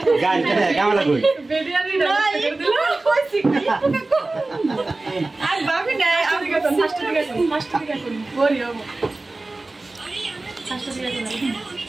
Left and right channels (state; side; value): quieter; left; 3.1 dB